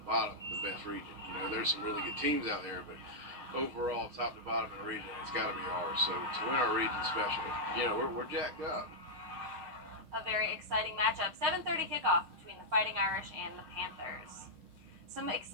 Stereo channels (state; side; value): late; left; 6.3 ms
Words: bottom, the best region. There's some really good teams out there, but overall, top to bottom in the region, it's got to be ours. So to win our region especially, we're jacked up. A very exciting matchup. 7:30 kickoff between the Fighting Irish and the Panthers. Some